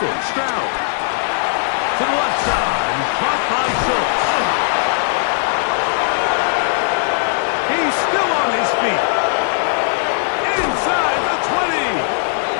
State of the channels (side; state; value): right; silent; digital silence